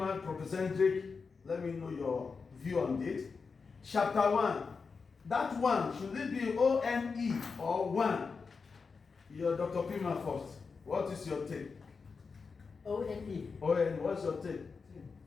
Professor Hendrik, let me know your view on it. Chapter 1. That one, should it be O-N-E or 1? Your Dr. Piman first. What is your take? O-N-E. O-N, what's your take?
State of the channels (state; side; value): quieter; right; 5.0 dB